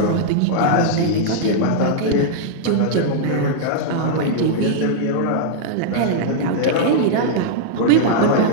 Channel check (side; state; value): both; different; correlation -0.01